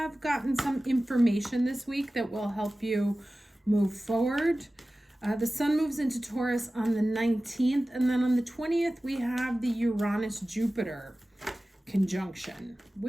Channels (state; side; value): normal; both; correlation 0.96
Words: gotten some information this week that will help you move forward. The Sun moves into Taurus on the 19th, and then on the 20th, we have the Uranus-Jupiter conjunction,